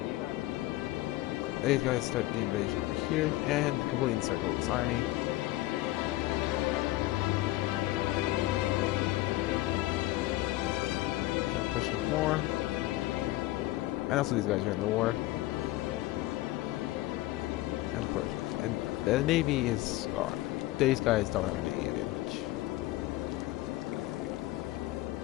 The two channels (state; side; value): quieter; right; 17.5 dB